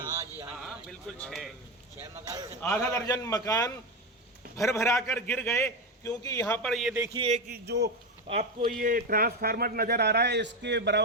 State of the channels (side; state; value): both; normal; correlation 0.14